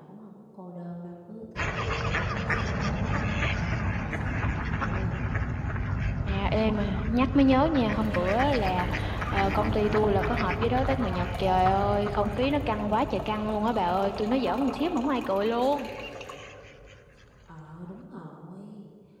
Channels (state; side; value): identical; both; correlation 1.00